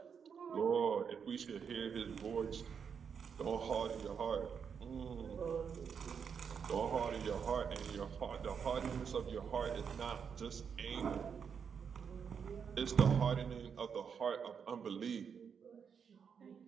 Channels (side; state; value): left; quieter; 6.8 dB